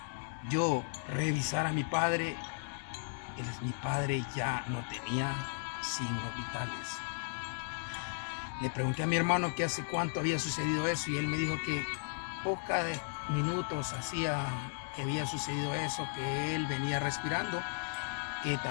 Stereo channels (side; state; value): right; silent; digital silence